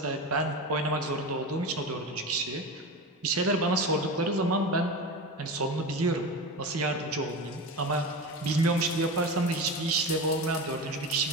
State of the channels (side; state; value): both; normal; correlation 0.25